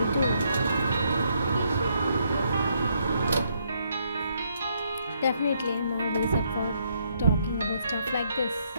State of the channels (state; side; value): inverted; both; correlation -0.73